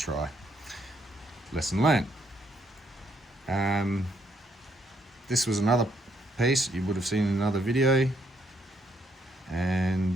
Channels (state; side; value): normal; both; correlation 0.72